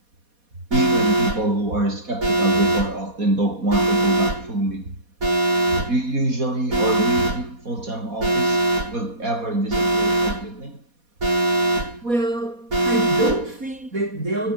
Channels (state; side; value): late; left; 4.2 ms